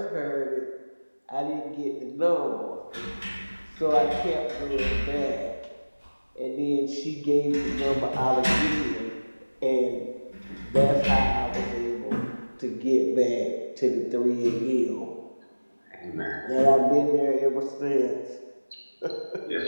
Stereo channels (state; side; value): inverted; both; correlation -1.00